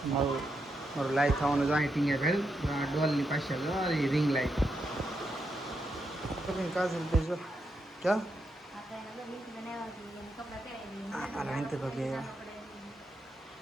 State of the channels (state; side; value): normal; both; correlation 0.83